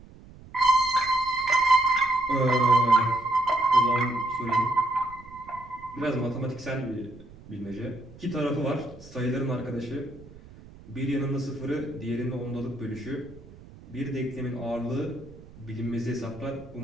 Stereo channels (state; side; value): noise; right; rumble, 20 dB below the sound